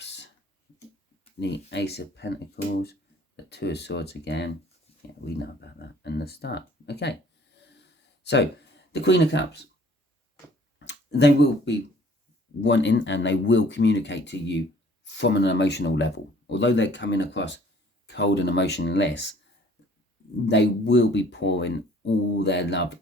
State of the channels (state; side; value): normal; both; correlation 0.56